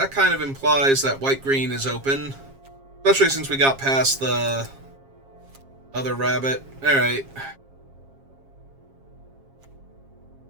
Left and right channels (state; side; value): late; left; 7.4 ms